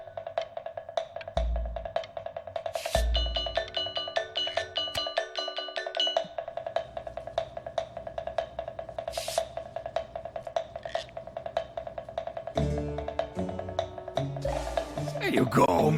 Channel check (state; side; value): identical; both; correlation 1.00